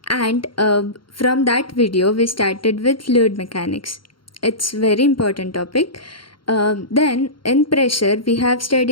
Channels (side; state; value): right; late; 0.73 ms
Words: and from that video we started with fluid mechanics. It's very important topic. Then in pressure we have